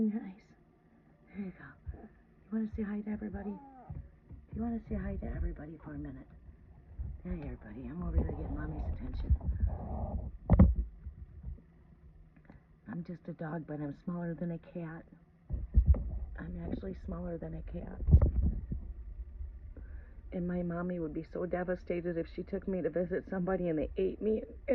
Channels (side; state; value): both; identical; correlation 1.00